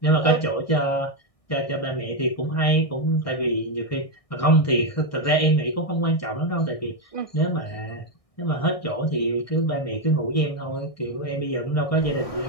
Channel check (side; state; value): right; late; 1.6 ms